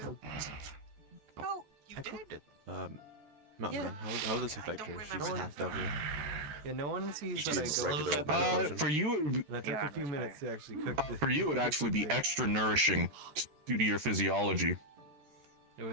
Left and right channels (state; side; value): late; left; 13 ms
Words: Oh, you I cooked it. Mountain Man, how will this affect her? She's half devil. Yeah, no one sees that She's I regular go. old mana potion. For you, And I took a few minutes to actually cook it. for you, it would actually be extra nourishing due to your physiology. It